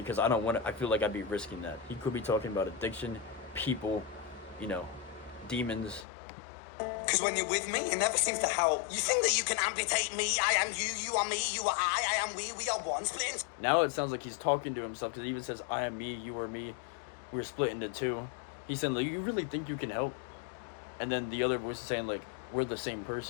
I don't want to, I feel like I'd be risking that. He could be talking about addiction, people, you know, demons. Because when you're with me, it never seems to help. You think that you can amputate me? I am you, you are me, you are I am we are one, split into... Now it sounds like he's talking to himself, because he even says, I am me, you are me, we're split into two. He's saying, like, you really think you can help? And then the other voice is saying, like, we're the same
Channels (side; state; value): right; drops out; at 6.1 s